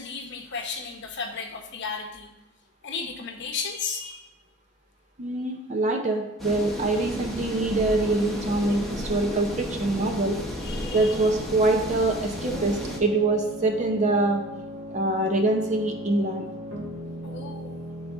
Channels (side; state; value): both; normal; correlation 0.43